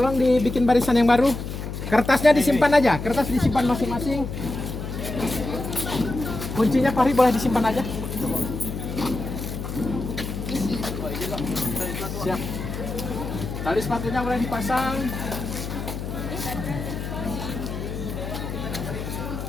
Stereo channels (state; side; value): noise; left; hum, 6 dB below the sound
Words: dibikin barisan yang baru. Kertasnya disimpan aja, kertas disimpan masing-masing. Kuncinya Fahri boleh disimpan aja. Siap. Tali sepatunya boleh dipasang.